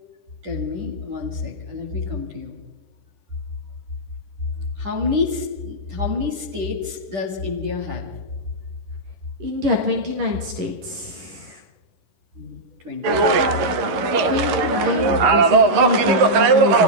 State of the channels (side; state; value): left; late; 11 ms